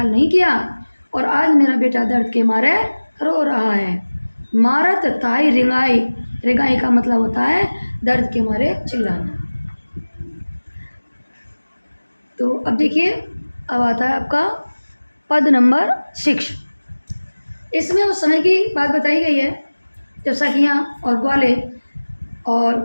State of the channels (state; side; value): inverted; both; correlation -1.00